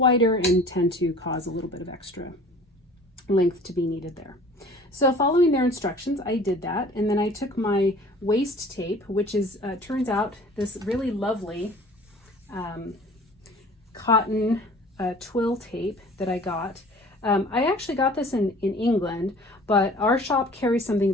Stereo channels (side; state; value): both; normal; correlation 0.47